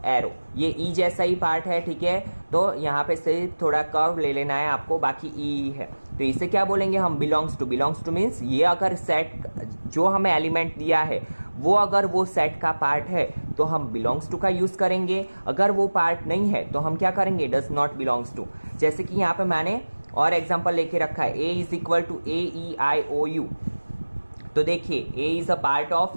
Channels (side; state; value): both; inverted; correlation -1.00